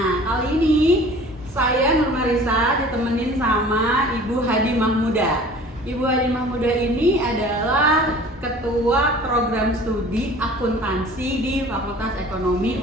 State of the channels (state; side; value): normal; both; correlation 0.46